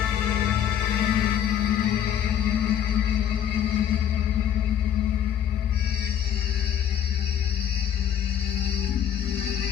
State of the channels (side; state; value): right; quieter; 9.7 dB